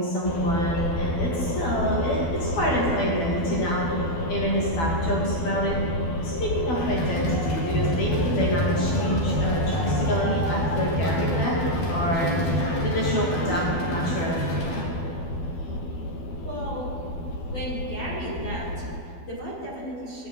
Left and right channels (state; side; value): late; right; 12 ms